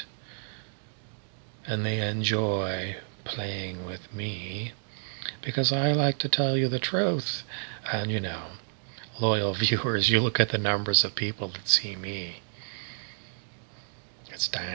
And they enjoy playing with me, because I like to tell you the truth. And loyal viewers, you look at the numbers of people that see me. It's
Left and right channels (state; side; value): silent; left; digital silence